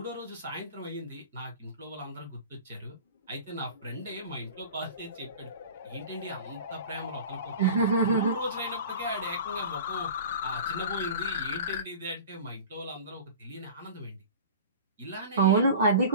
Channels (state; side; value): inverted; both; correlation -0.38